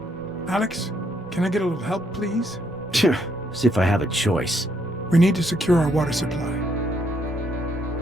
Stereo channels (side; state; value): both; normal; correlation 0.72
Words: Alex, can I get a little help, please? See if I have a choice. We need to secure our water supply.